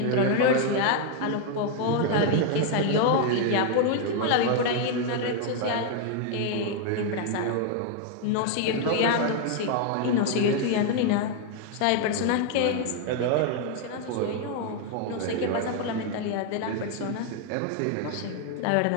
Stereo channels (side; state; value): both; different; correlation 0.00